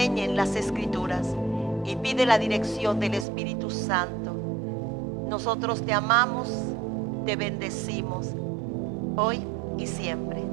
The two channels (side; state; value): left; drops out; at 3.2 s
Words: las Escrituras y pide la dirección del Espíritu Santo. Nosotros te amamos, te bendecimos hoy y siempre.